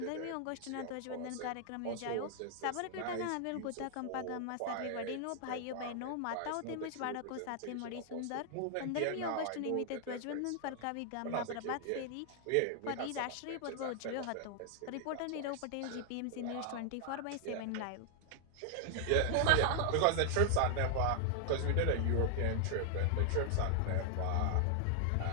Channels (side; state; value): both; different; correlation 0.00